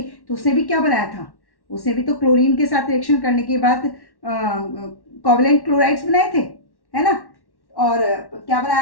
तो उसने भी क्या बनाया था, उसने भी तो क्लोरीन के साथ रिएक्शन करने के बाद कोवेलेंट क्लोराइड्स बनाए थे, है ना। और क्या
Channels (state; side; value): late; right; 1.1 ms